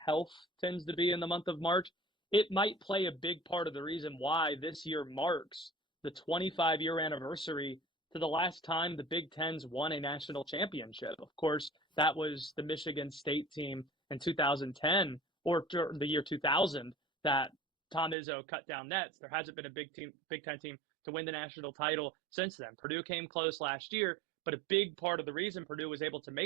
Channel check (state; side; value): drops out; left; at 18.2 s